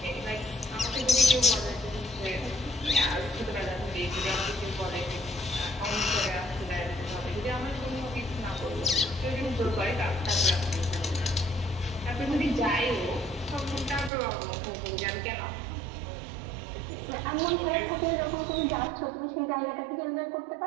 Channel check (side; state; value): left; drops out; at 14.1 s